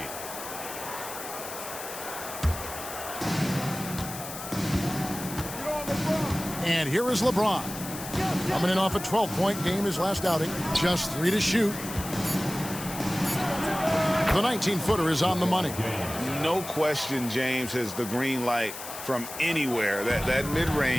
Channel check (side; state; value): left; noise; hiss, 10 dB below the sound